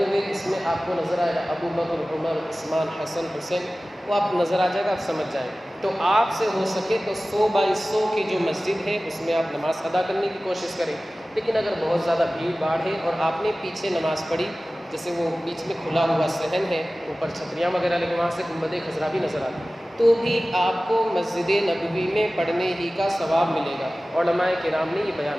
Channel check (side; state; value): both; normal; correlation 0.97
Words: اس میں آپ کو نظر آئے گا ابو بکر، عمر، عثمان، حسن، حسین، وہ آپ نظر آ جائے گا، آپ سمجھ جائیں۔ تو آپ سے ہو سکے تو 100 بائی 100 کی جو مسجد ہے اس میں آپ نماز ادا کرنے کی کوشش کریں۔ لیکن اگر بہت زیادہ بھیڑ بھاڑ ہے اور آپ نے پیچھے نماز پڑھی، جیسے وہ بیچ میں کھلا ہوا صحن ہے، اوپر چھتریاں وغیرہ لگے، وہاں سے گنبد خضرا بھی نظر آتی، تو بھی آپ کو مسجد نبوی میں پڑھنے ہی کا ثواب ملے گا۔ علماء کرام نے یہ بیان